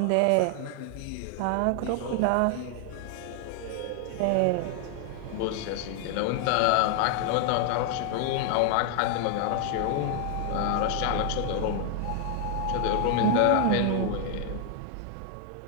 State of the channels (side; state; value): both; different; correlation 0.00